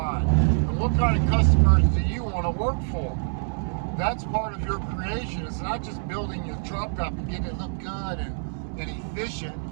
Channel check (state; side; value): silent; left; digital silence